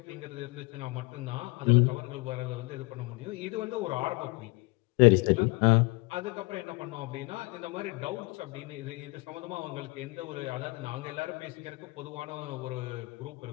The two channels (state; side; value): quieter; right; 25.8 dB